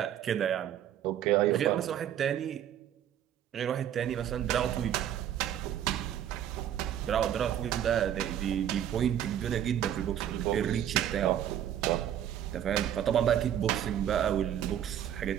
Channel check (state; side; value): quieter; left; 10.4 dB